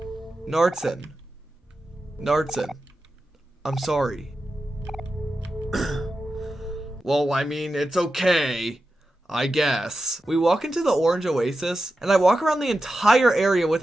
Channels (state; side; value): normal; both; correlation 0.91